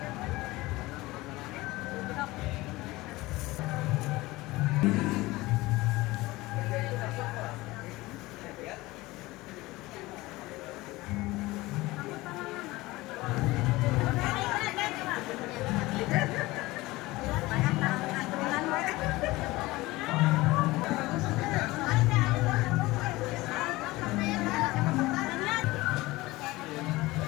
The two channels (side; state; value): right; quieter; 20.0 dB